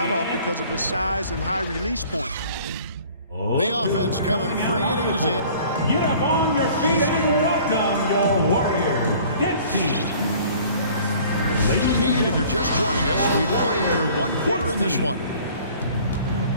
off because of his size and high release point. The offense coming free and easy. Get up on your feet and welcome your Warriors dance team. And if you're just joining us, we've played through 1 quarter in this one.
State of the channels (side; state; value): both; inverted; correlation -0.51